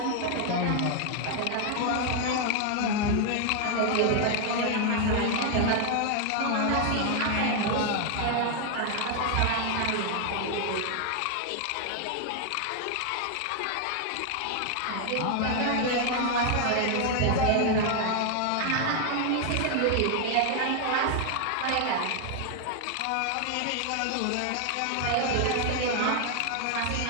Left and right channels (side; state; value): both; different; correlation 0.00